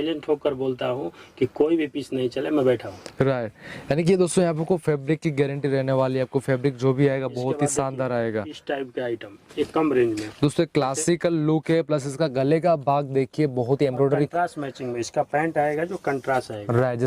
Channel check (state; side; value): identical; both; correlation 1.00